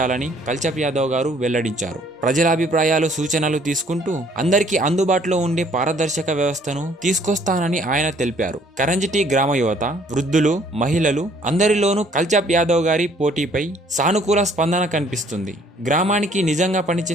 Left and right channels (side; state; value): both; normal; correlation 0.60